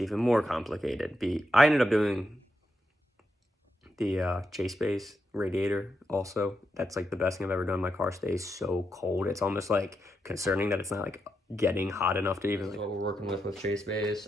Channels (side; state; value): both; normal; correlation 0.84